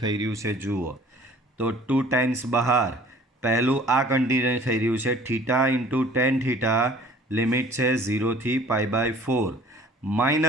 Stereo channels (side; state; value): both; normal; correlation 0.51